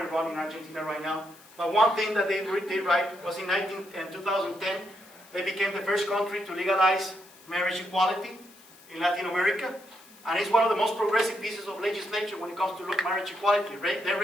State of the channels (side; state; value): left; noise; hiss, 24 dB below the sound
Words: on in Argentina right now, but one thing that they did right was in 2010, they became the first country to legalize marriage equality in Latin America, and it's one of the most progressive pieces of legislation when it comes to marriage equality. They